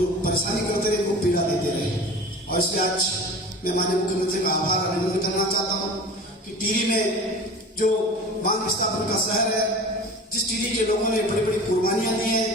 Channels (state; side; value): normal; both; correlation 0.37